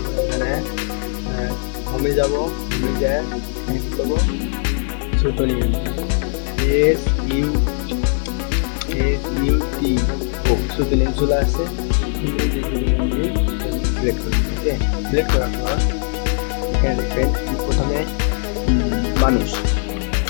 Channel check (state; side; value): silent; right; digital silence